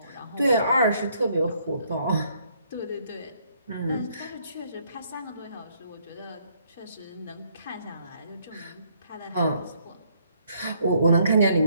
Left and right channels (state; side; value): inverted; both; correlation -0.68